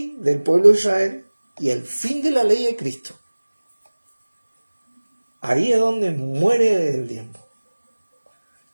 del pueblo de Israel y el fin de la ley de Cristo. Ahí es donde muere el diezmo.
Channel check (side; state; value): both; inverted; correlation -1.00